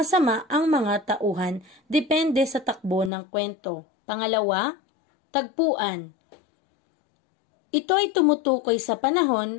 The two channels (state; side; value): drops out; right; at 3.1 s